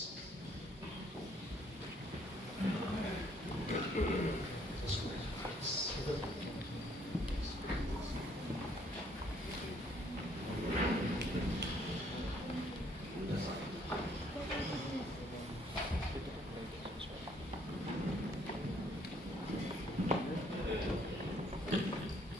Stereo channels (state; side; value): normal; both; correlation 0.65